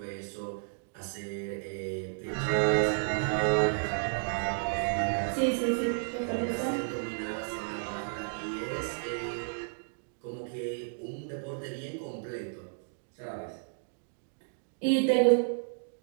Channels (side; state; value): left; silent; digital silence